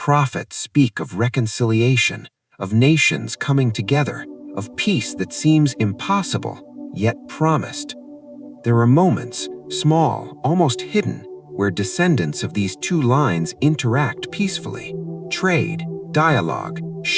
speak of reconciliation, of nations coming together, of peace that seems impossible, yet promised. There are moments, small, almost hidden, where descendants of these two lines interact peacefully. Trade, dialogue,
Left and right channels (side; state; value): both; identical; correlation 1.00